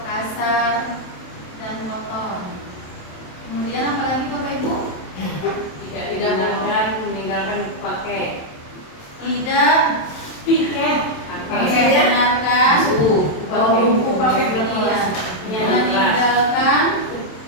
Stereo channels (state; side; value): late; right; 27 ms